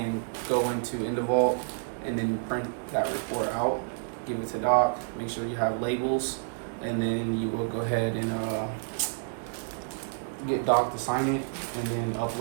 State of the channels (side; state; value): left; silent; digital silence